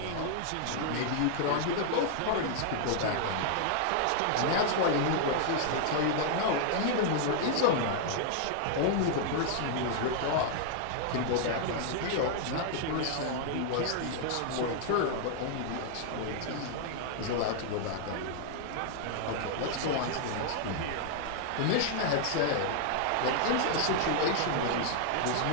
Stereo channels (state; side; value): different; both; correlation -0.01